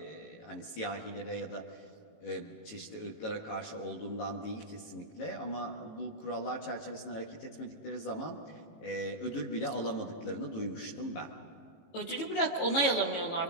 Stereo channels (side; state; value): right; late; 18 ms